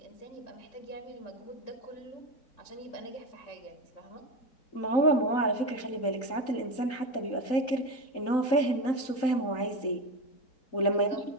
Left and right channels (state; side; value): late; right; 3.9 ms